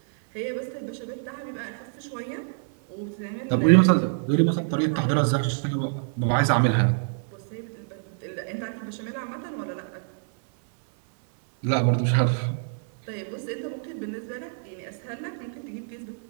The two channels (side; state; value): left; silent; 57 dB below the other